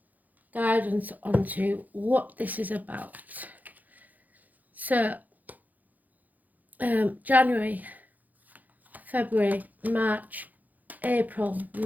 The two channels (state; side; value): late; left; 0.081 ms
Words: guidance onto what this is about. So January, February, March, April,